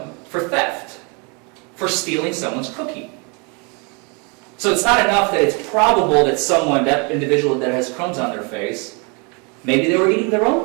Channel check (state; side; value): quieter; left; 32.7 dB